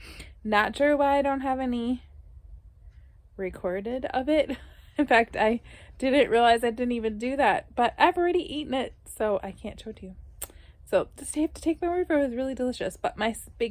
not sure why I don't have any recorded of it. In fact, I didn't realize I didn't even do that, but I've already eaten it, so I can't show it to you. So just have to take my word for it. It was really delicious. But my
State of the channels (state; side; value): identical; both; correlation 1.00